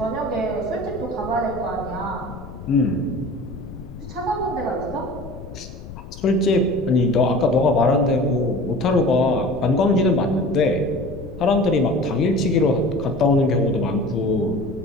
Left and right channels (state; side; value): noise; left; rumble, 13 dB below the sound